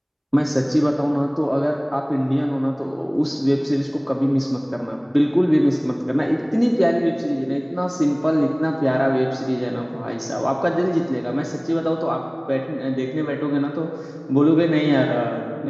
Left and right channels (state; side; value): identical; both; correlation 1.00